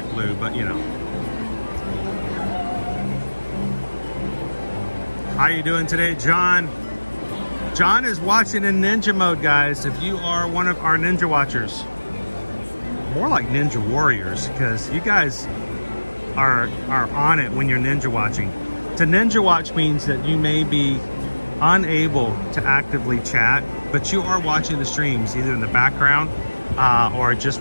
blue, but you know. How you doing today, John? John is watching in ninja mode, guys. If you are one of our ninja watchers, more like ninja warriors, because you guys are on it when you're ninja watching. To ninja watch means that you may be unable to actively chat, but you are watching the streams either in the background or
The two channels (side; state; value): both; inverted; correlation -1.00